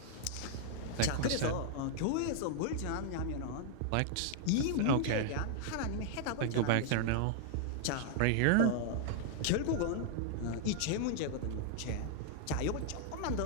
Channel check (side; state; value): both; different; correlation -0.01